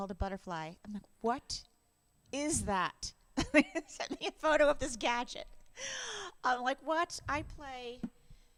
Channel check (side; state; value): both; identical; correlation 1.00